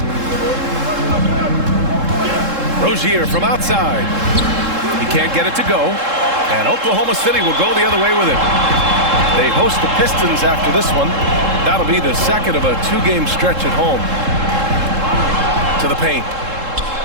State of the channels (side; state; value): left; late; 3.7 ms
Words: Rozier from outside. He can't get it to go. And Oklahoma City will go the other way with it. They host the Pistons after this one. That'll be the second of a 2-game stretch at home. To the paint.